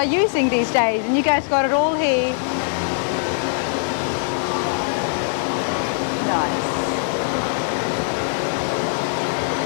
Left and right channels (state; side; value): silent; right; 64 dB below the other